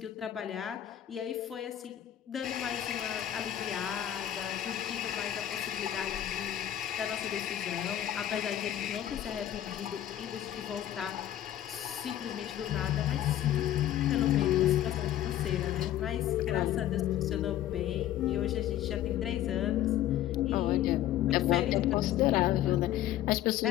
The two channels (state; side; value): quieter; right; 12.2 dB